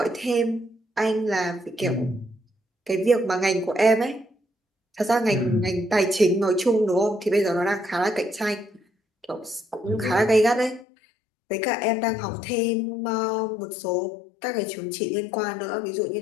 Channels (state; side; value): drops out; right; at 10.9 s